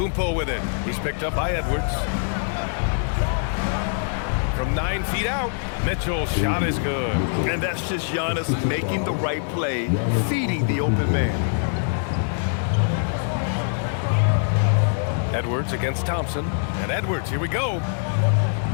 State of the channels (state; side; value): silent; right; digital silence